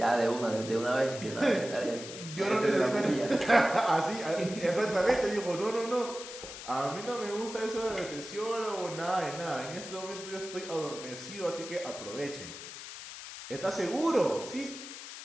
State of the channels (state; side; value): noise; left; hiss, 11 dB below the sound